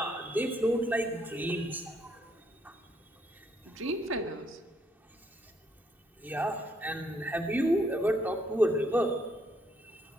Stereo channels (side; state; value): both; normal; correlation 0.71